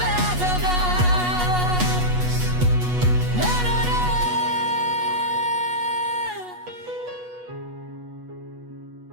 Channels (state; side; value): late; left; 8.2 ms